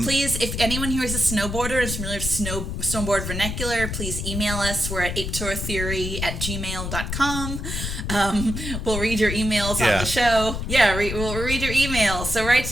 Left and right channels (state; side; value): noise; left; rumble, 4 dB below the sound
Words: Please, if anyone here is a snowboarder and is familiar with snowboard vernacular, please email us. We're at Ape-teur Theory at gmail.com. We'll read your emails on the show. Yeah, we'll read your emails. So write